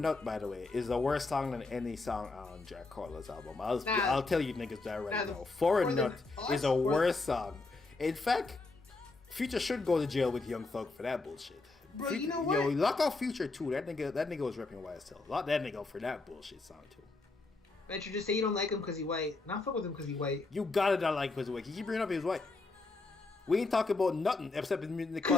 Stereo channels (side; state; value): right; quieter; 3.5 dB